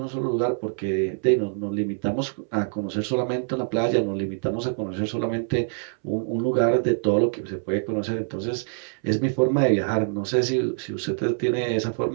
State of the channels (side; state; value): left; silent; 62 dB below the other